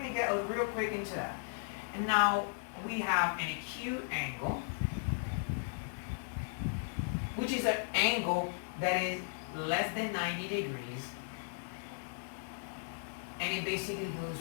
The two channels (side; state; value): right; silent; digital silence